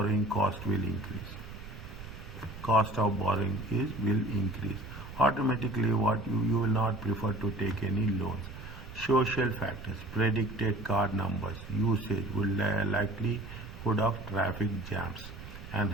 cost will increase. Cost of borrowing will increase. Automatically, what you will not prefer to take any loans. Social factors, predicted car numbers, usage will likelihood of traffic jams and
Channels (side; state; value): right; noise; rumble, 13 dB below the sound